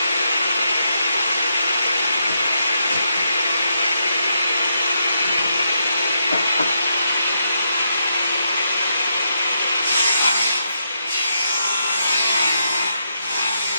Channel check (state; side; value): inverted; both; correlation -0.80